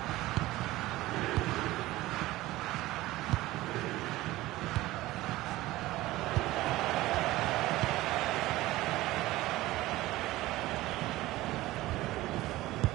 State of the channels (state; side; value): quieter; left; 17.6 dB